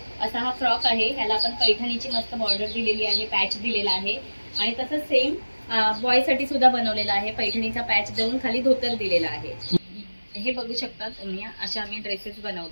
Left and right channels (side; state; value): both; inverted; correlation -1.00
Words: असा हा फ्रॉक आहे, ह्याला आपण पैठणीची मस्त बॉर्डर दिलेली आहे, पॅच दिलेला आहे आणि तसंच सेम बॉय साठी सुद्धा बनवलेला आहे, पैठणीचा पॅच देऊन खाली धोतर दिलेला आहे। हे बघू शकता तुम्ही, अशा आम्ही ड्रेसेस